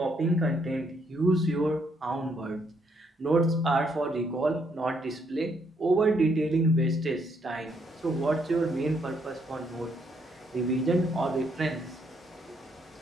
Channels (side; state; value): both; normal; correlation 0.72